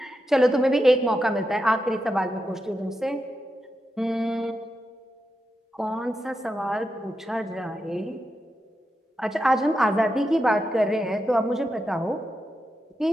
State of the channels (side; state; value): both; normal; correlation 0.87